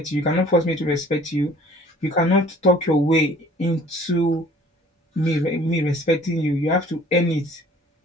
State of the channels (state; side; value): normal; both; correlation 0.52